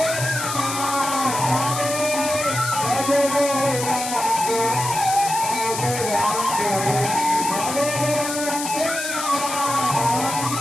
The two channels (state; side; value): noise; left; hiss, 5 dB below the sound